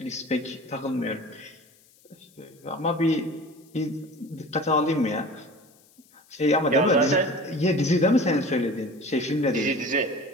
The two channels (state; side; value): noise; left; hiss, 30 dB below the sound